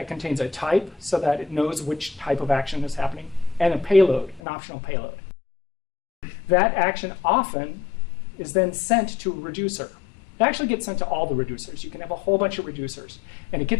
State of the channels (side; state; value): right; drops out; at 4.4 s